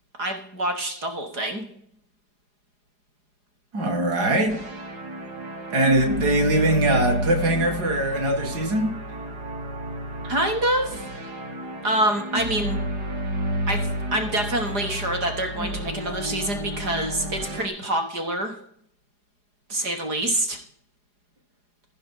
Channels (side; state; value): left; late; 4.8 ms